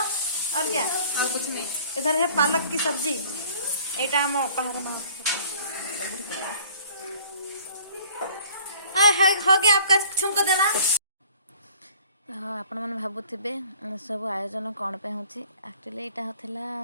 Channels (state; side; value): inverted; both; correlation -0.52